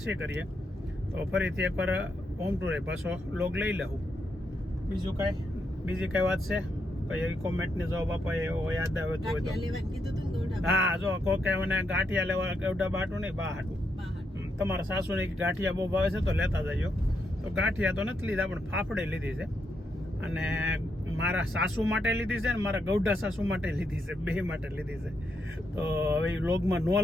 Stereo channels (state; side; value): normal; both; correlation 0.80